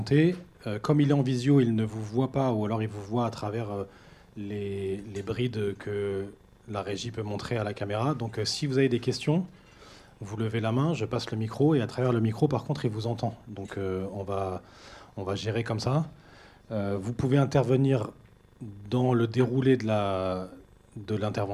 Comme il est en visio, il ne vous voit pas, ou alors il vous voit à travers les brides que la régie peut montrer à la caméra. Donc si vous avez des questions, vous levez la main, je passe le micro, et à travers le micro, par contre, il vous entend. Donc on va gérer comme ça. Vous pouvez intervenir dans le déroulé de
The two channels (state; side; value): identical; both; correlation 1.00